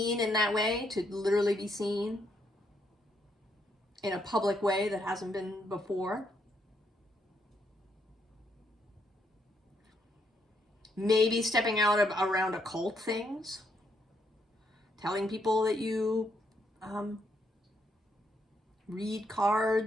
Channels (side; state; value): both; normal; correlation 0.75